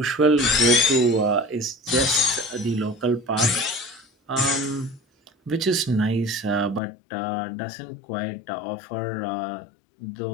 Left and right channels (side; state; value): right; drops out; at 6.8 s